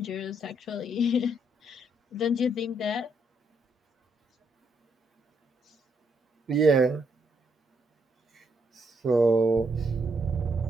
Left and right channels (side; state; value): both; normal; correlation 0.75